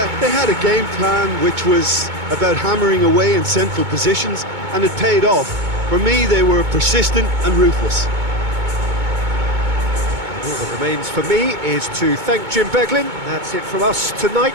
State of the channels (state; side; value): late; left; 2.2 ms